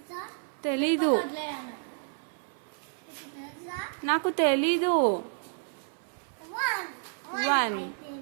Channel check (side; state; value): left; silent; 56 dB below the other